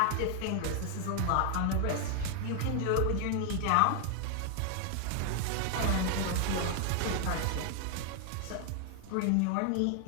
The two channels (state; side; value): different; both; correlation 0.00